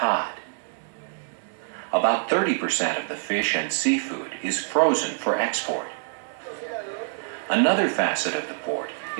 About 30% of the fish and seafood is frozen for export. Another facet of the port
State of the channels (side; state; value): left; silent; digital silence